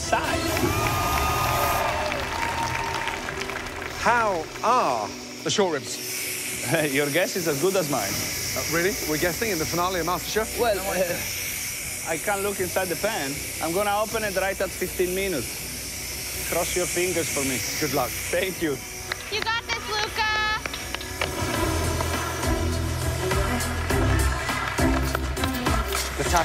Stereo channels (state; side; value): identical; both; correlation 1.00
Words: How are the short ribs? Your guess is as good as mine. Really? We're guessing in the finale of MasterChef? Well, I can't look inside the pan. I'm gonna open it right at 15 minutes. Cross your fingers for me. Good luck. Thank you. You got this, Luca.